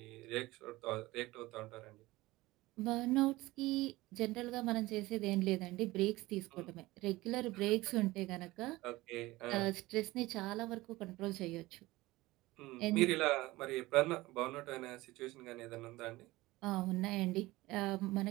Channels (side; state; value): left; quieter; 19.4 dB